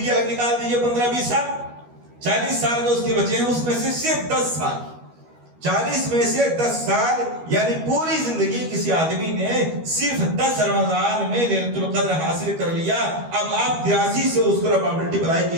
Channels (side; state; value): left; late; 12 ms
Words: الگ نکال دیجئے 15-20 سال، 40 سال جو اس کے بچے ہیں اس میں سے صرف 10 سال، 40 میں سے 10 سال یعنی پوری زندگی کسی آدمی نے صرف 10 رمضان میں لیلۃ القدر حاصل کر لیا۔ اب آپ 83 سے اس کو پرابلٹی بڑھائی